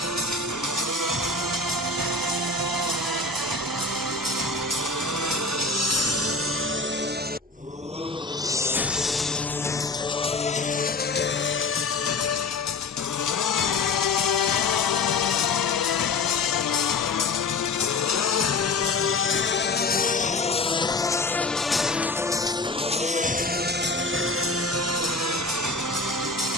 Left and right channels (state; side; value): quieter; right; 3.5 dB